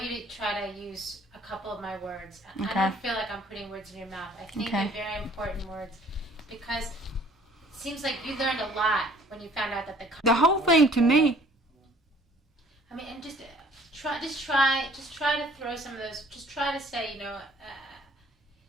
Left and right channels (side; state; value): both; normal; correlation 0.56